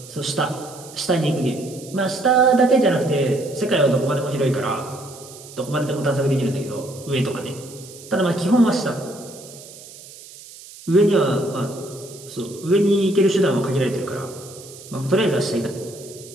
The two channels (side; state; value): right; noise; hiss, 18 dB below the sound